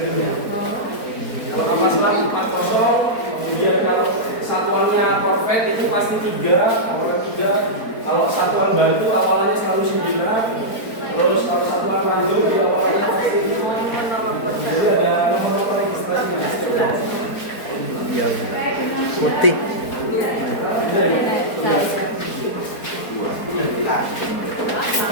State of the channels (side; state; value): right; late; 4.4 ms